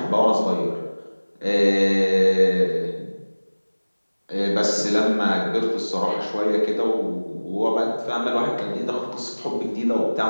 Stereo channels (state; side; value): inverted; both; correlation -1.00